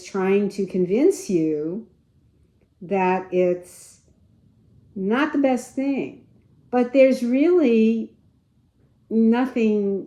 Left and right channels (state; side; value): identical; both; correlation 1.00